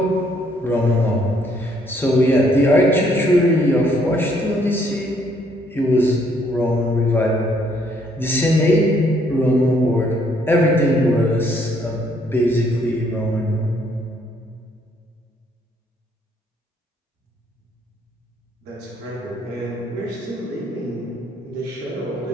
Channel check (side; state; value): both; normal; correlation 0.67